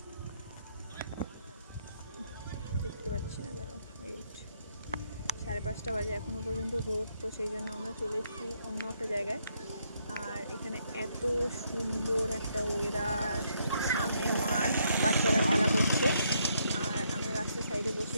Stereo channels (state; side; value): inverted; both; correlation -0.74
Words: দেখতে পাচ্ছি না, দাঁড়াও, ওয়েট। 5:30 বাজে, এখনো পর্যন্ত রোদ। তো সেই জন্য আমরা চলে এসেছি অন্য একটা জায়গায়। আর এখানে এত সুন্দর একটা ওয়েদার, সামনে মাঠ, বাচ্চারা খেলা করছে। আর আমরা রাস্তার সাইডে বসে